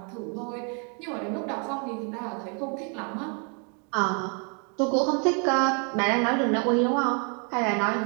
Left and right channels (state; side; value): quieter; left; 38.4 dB